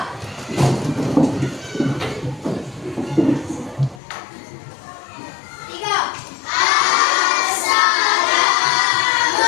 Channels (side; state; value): right; drops out; at 4.0 s